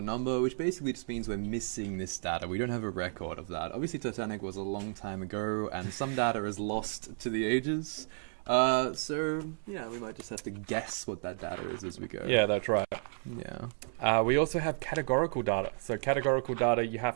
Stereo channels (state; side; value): silent; left; 56 dB below the other